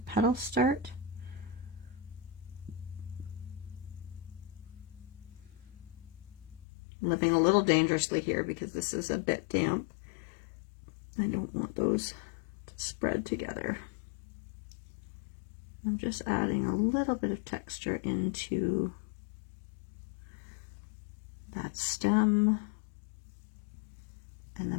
petals start. I'm living a little dangerously here because this is a bit damp. I don't want those to spread together. I'm just adding a little bit of texture into that stem. And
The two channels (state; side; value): drops out; right; at 6.7 s